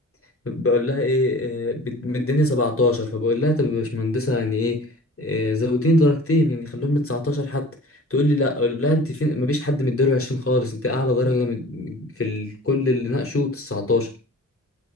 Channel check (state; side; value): normal; both; correlation 0.43